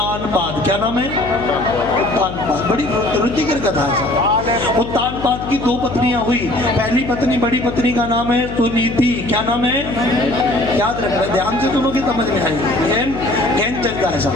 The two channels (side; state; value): left; noise; hum, 9 dB below the sound